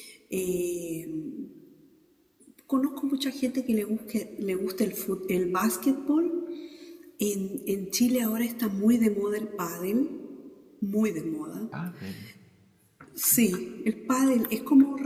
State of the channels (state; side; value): identical; both; correlation 1.00